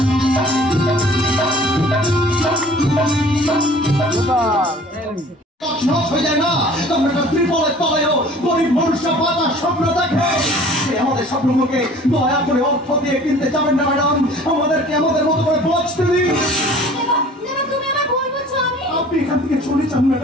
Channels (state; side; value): normal; both; correlation 0.49